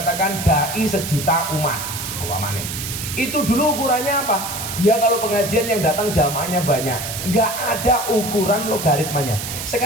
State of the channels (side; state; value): right; noise; hiss, 6 dB below the sound